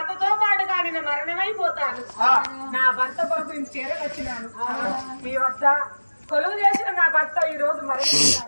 పాటుగా నేను మరణమైపోతాను. నా భర్త కొరకు నేను చేరవచ్చినాను. మీ వద్ద కొలువు చేసిన నా భర్త ఈ రోజు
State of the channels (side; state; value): both; inverted; correlation -1.00